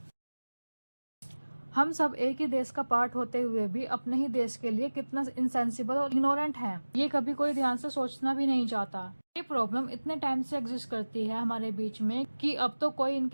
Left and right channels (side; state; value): both; inverted; correlation -1.00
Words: हम सब एक ही देश का पार्ट होते हुए भी अपने ही देश के लिए कितना इनसेंसिबल और इग्नोरेंट हैं, ये कभी कोई ध्यान से सोचना भी नहीं चाहता। ये प्रॉब्लम इतने टाइम से एग्जिस्ट करती है हमारे बीच में कि अब तो कोई